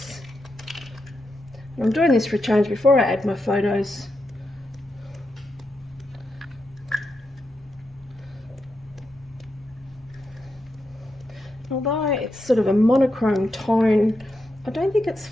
And I'm doing this for a change before I add my photos. Although it's sort of a monochrome tone, I don't think it's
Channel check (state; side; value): normal; both; correlation 0.85